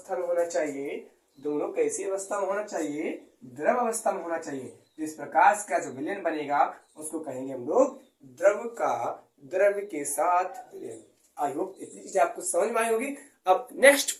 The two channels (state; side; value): identical; both; correlation 1.00